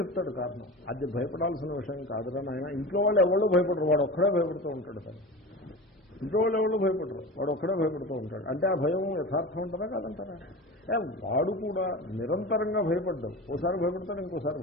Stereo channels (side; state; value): both; normal; correlation 0.30